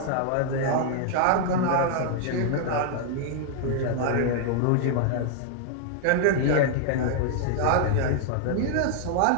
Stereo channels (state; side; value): different; both; correlation -0.01